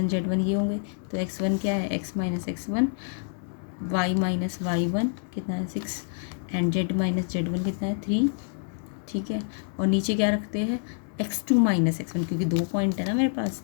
z1 ये होंगे। तो x1 क्या है, x - x1, y - y1 कितना है 6, एंड z - z1 कितना है 3, ठीक है। और नीचे क्या रखते हैं, x2 - x1, क्योंकि 2 पॉइंट है ना मेरे पास,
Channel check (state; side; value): silent; right; digital silence